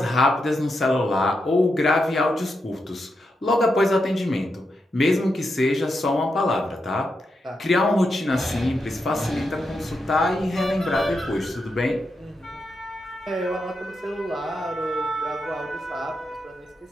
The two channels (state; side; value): normal; both; correlation 0.85